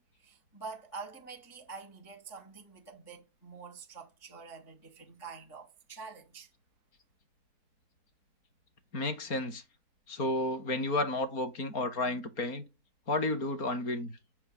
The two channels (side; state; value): right; late; 4.3 ms